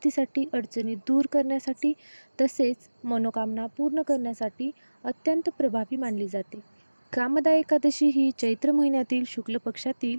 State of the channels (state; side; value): inverted; both; correlation -1.00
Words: अडचणी दूर करण्यासाठी तसेच मनोकामना पूर्ण करण्यासाठी अत्यंत प्रभावी मानली जाते. कामदा एकादशी ही चैत्र महिन्यातील शुक्ल पक्षातील